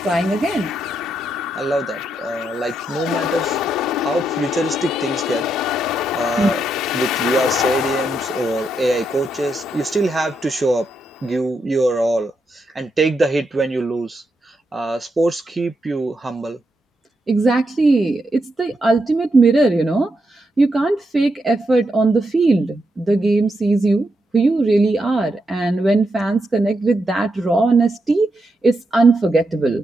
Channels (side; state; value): both; normal; correlation 0.82